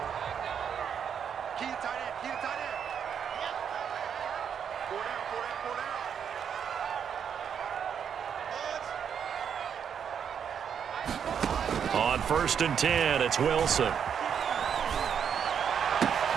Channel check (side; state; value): left; quieter; 7.8 dB